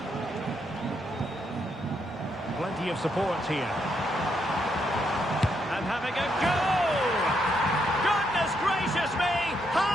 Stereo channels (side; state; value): both; normal; correlation 0.77